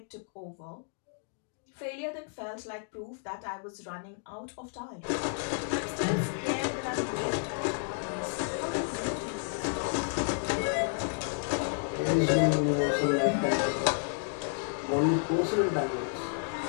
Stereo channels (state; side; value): silent; right; 57 dB below the other